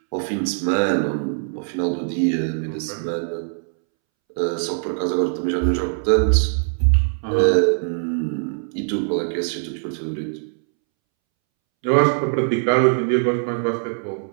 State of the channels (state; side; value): silent; left; 64 dB below the other